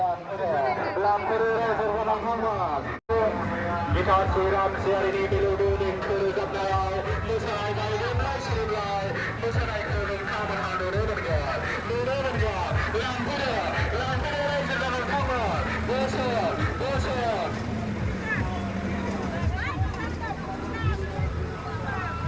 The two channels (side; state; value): both; identical; correlation 1.00